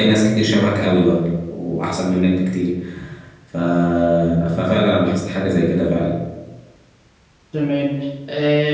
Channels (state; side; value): identical; both; correlation 1.00